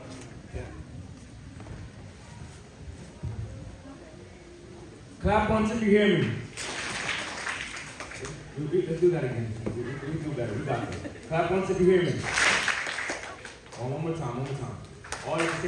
Clap once if you hear me. Let's do that again. We do better. We got this. Clap once if you hear me. Oh, one more time. All at the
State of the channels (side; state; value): both; identical; correlation 1.00